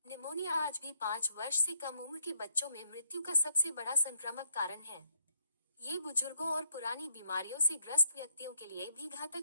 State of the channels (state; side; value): inverted; both; correlation -0.73